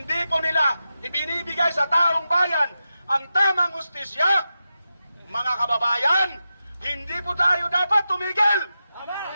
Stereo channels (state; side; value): inverted; both; correlation -0.90